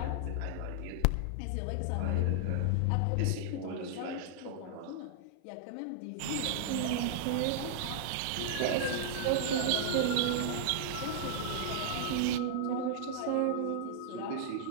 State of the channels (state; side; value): different; both; correlation -0.01